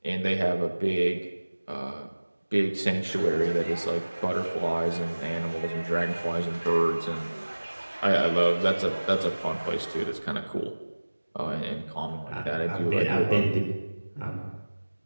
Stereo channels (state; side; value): inverted; both; correlation -1.00